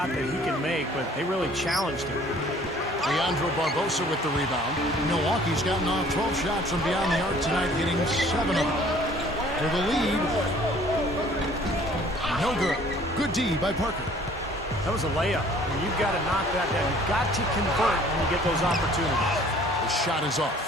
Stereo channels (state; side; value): normal; both; correlation 0.54